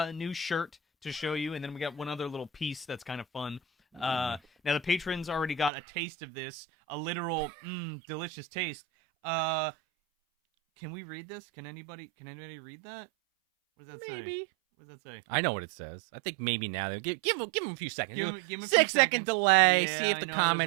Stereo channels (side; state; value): left; drops out; at 5.7 s